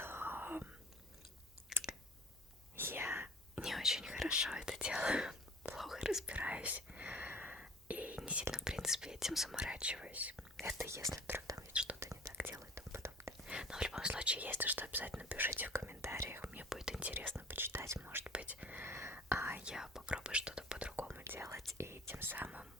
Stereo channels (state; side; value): normal; both; correlation 0.46